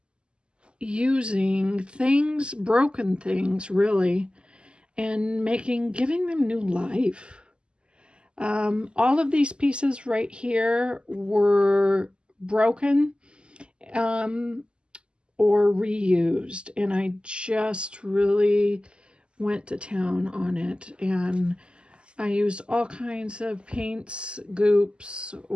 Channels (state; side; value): late; left; 0.051 ms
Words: using things, broken things really, and giving them new life. All of these pieces right here were broken or reused, and I just really went to town on it, and I used all kinds of paints, goops,